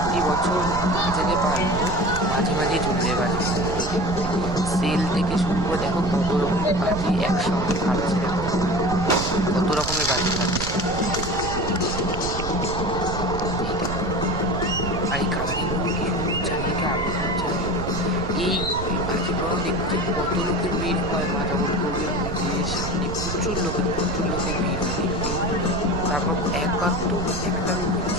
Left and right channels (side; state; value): right; noise; rumble, 6 dB below the sound